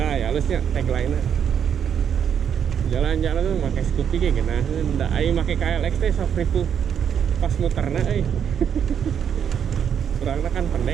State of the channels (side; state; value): left; quieter; 8.2 dB